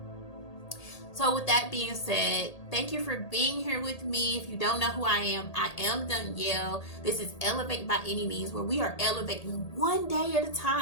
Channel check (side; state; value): right; late; 1.8 ms